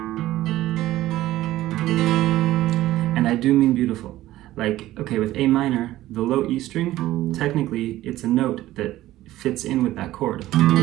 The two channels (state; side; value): quieter; left; 15.3 dB